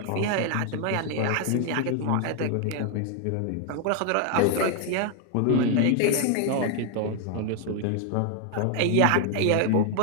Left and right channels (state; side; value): different; both; correlation 0.00